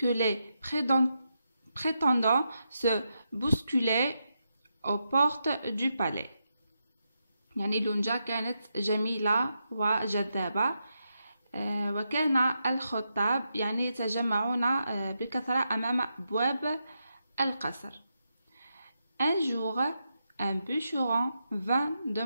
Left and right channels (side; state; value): both; inverted; correlation -0.85